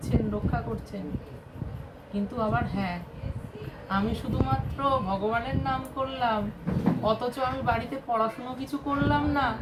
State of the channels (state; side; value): identical; both; correlation 1.00